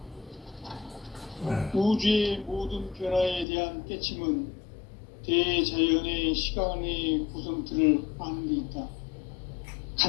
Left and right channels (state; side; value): drops out; right; at 3.5 s